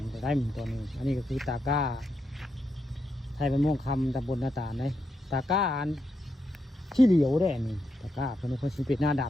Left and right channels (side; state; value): both; normal; correlation 0.83